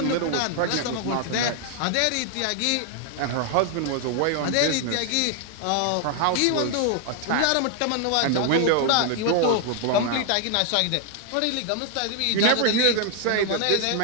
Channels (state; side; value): different; both; correlation 0.00